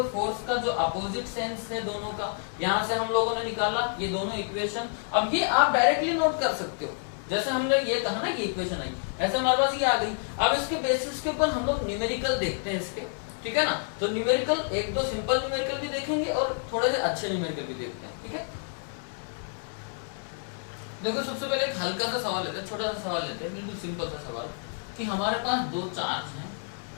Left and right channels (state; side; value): silent; right; 59 dB below the other